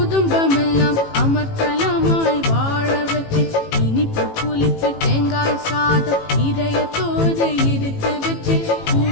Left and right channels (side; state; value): right; late; 18 ms